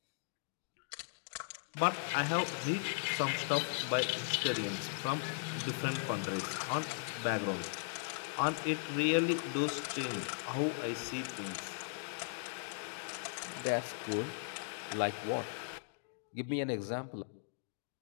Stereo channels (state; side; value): silent; right; digital silence